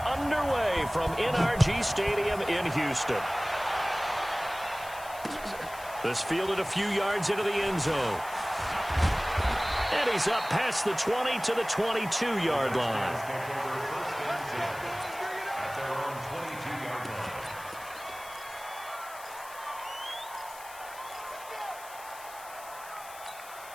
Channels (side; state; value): left; noise; hiss, 17 dB below the sound